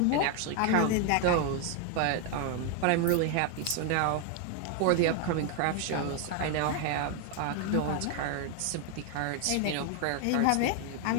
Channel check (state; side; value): different; both; correlation 0.01